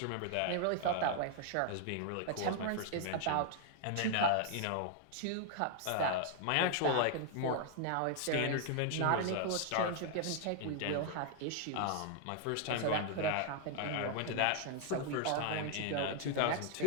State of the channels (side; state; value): both; different; correlation 0.00